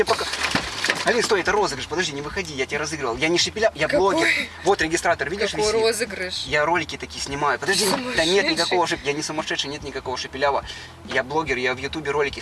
пока... Алин, стой, это розыгрыш, подожди, не выходи, я тебя разыгрывал. Я не Шепеляв, я Какой? блогер. Вот регистратор, видишь, Какой висит? розыгрыш? Я ролики такие снимаю. Подожди, да нет Сумасшедший. никакого я не сумасшедший, нет никакого Шепелява. Я блогер, я в Ютубе ролики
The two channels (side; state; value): both; identical; correlation 1.00